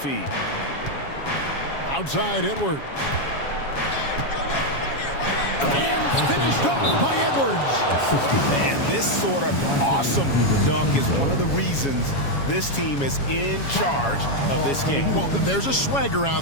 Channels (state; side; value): late; right; 7.2 ms